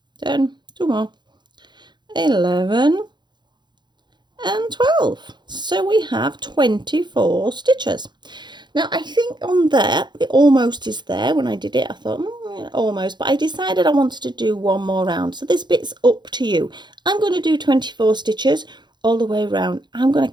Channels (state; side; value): late; left; 0.21 ms